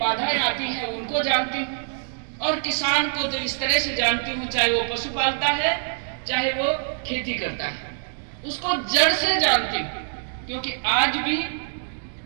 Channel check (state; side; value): silent; left; digital silence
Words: आती हैं उनको जानती हूँ, और किसान को तो इस तरह से जानती हूँ, चाहे वो पशु पालता है, चाहे वो खेती करता है, उसको जड़ से जानती हूँ। क्योंकि आज भी